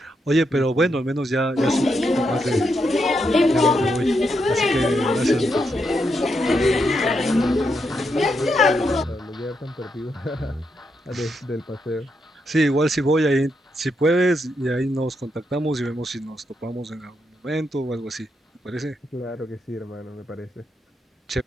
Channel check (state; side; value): normal; both; correlation 0.81